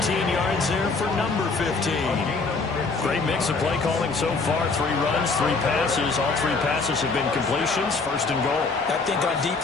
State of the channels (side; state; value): right; quieter; 4.1 dB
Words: 15 yards there for number 15. Great mix of play calling so far. 3 runs, 3 passes. All 3 passes have been completions. 1st and goal. I think on